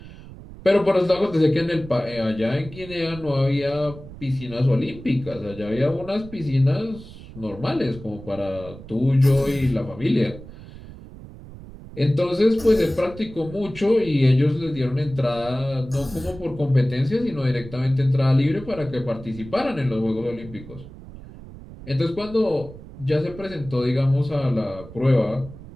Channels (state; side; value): noise; right; rumble, 16 dB below the sound